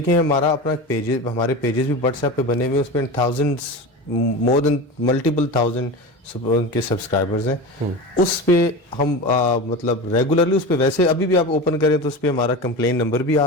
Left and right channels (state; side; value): normal; both; correlation 0.27